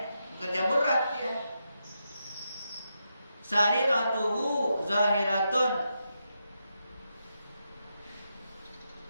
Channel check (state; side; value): inverted; both; correlation -0.84